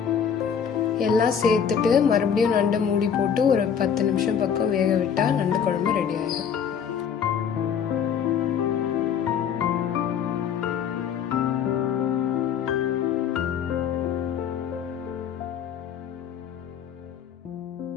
எல்லாம் சேர்த்துட்டு மறுபடியும் நண்டை மூடி போட்டு ஒரு 10 நிமிஷம் பக்கம் வேக விட்டா நண்டு குழம்பு ரெடி ஆயிடும்.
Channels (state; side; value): quieter; right; 7.7 dB